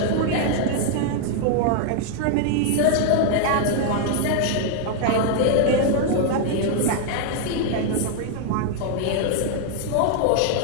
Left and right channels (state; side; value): different; both; correlation 0.00